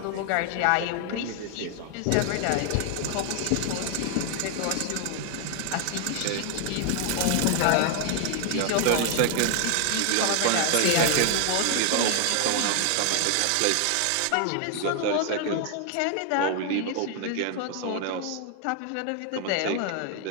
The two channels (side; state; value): both; different; correlation 0.00